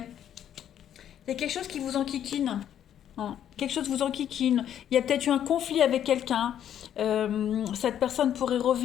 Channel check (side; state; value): right; quieter; 10.1 dB